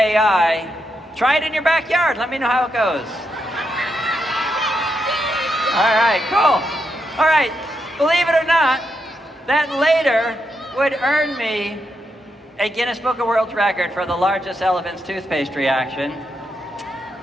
try it in your backyard. Let me know how it goes. All right, cool. All right, believe it or not, that later would earn me a Guinness Book of World Record for the largest elephant's toothpaste reaction.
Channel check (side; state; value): both; normal; correlation 0.82